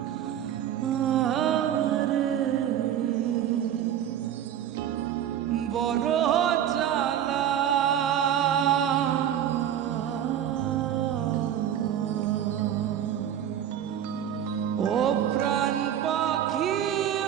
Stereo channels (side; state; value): left; quieter; 10.2 dB